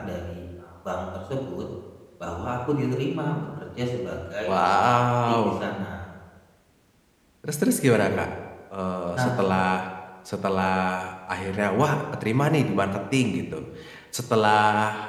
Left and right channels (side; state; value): both; identical; correlation 1.00